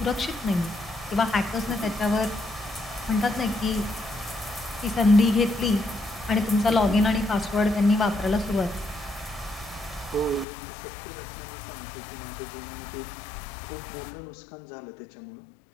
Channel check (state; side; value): drops out; right; at 10.5 s